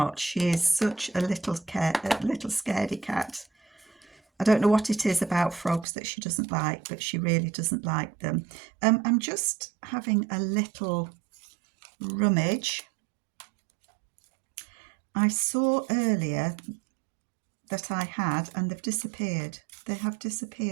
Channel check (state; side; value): drops out; left; at 5.9 s